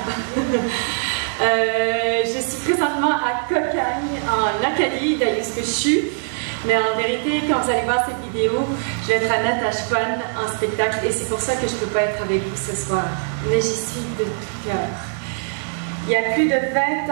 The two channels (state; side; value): silent; left; digital silence